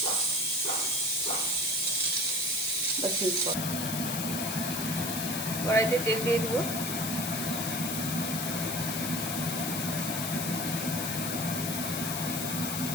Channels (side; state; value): left; noise; hiss, 2 dB below the sound